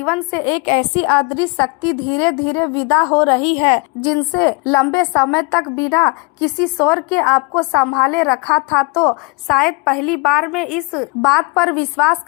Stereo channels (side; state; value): right; quieter; 28.9 dB